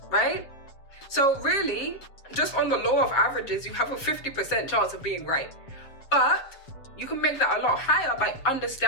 right? So really, just on the law of averages, you have a 50% chance of being right. But you can make that a lot higher by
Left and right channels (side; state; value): right; late; 7.2 ms